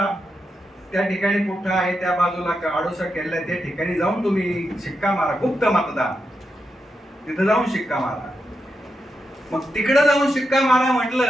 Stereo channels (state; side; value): normal; both; correlation 0.86